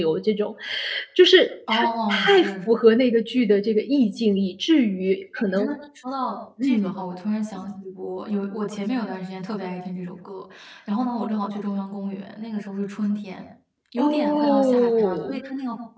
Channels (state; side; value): identical; both; correlation 1.00